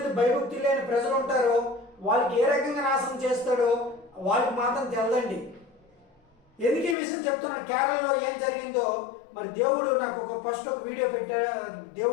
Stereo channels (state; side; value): drops out; right; at 7.0 s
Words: భయభక్తులు లేని ప్రజలు ఉంటారో వాళ్ళకి ఏ రకంగా నాశనం చేస్తాడో వాళ్ళకి మాత్రం తెలదండి. ఎందుకు ఈ విషయం చెప్తున్నాను? కేరళలో ఏం జరిగిందో మరి దేవుడు నాకు ఫస్ట్ ఒక వీడియో పెట్టాడు,